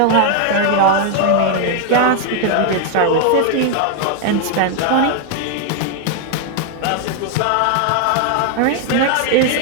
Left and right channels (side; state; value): both; different; correlation 0.00